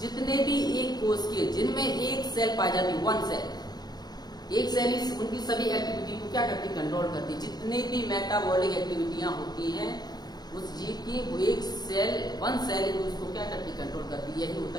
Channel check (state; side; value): late; right; 0.19 ms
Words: भी एक कोश के जिनमें एक सेल पाई जाती, वन सेल, एक सेल उनकी सभी एक्टिविटी को क्या करती? कंट्रोल करती। जितने भी मेटाबॉलिक एक्टिविटियां होती हैं उस जीव की वो एक सेल, वन सेल है, उसको क्या करती, कंट्रोल करती है। यही होता